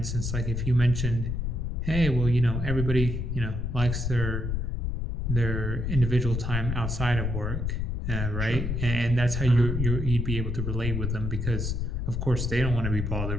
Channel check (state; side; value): noise; left; rumble, 2 dB below the sound